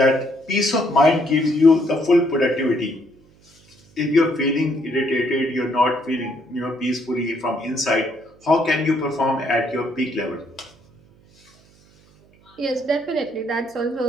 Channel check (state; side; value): noise; right; hum, 30 dB below the sound